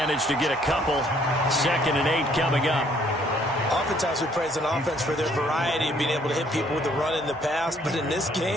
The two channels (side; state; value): both; normal; correlation 0.64